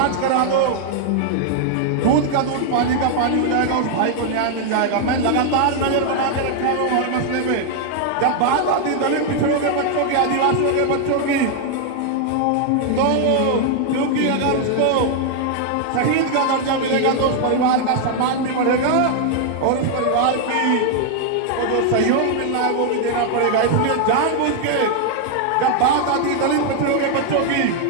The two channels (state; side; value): different; both; correlation 0.00